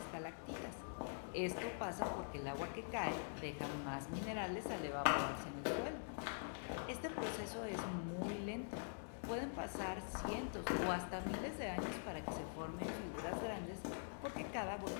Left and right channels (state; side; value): silent; right; digital silence